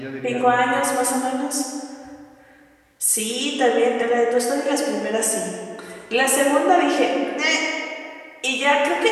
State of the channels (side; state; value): both; identical; correlation 1.00